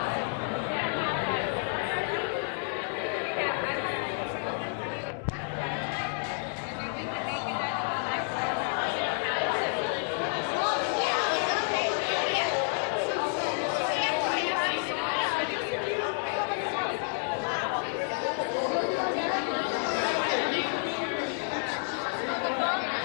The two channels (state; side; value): silent; right; 56 dB below the other